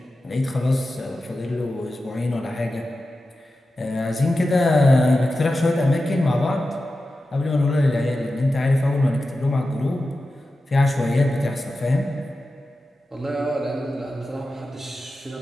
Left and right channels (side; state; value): both; normal; correlation 0.93